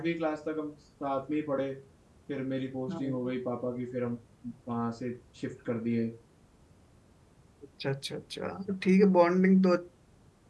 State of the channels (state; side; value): identical; both; correlation 1.00